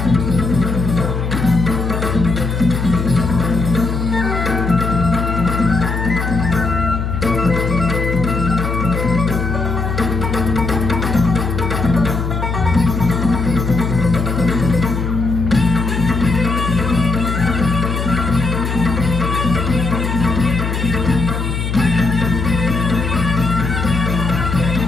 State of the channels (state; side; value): noise; left; hum, 2 dB below the sound